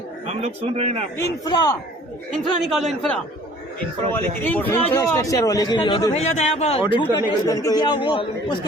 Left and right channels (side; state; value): both; normal; correlation 0.52